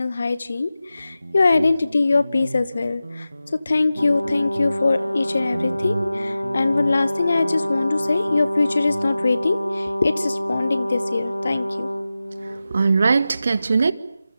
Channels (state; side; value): inverted; both; correlation -0.94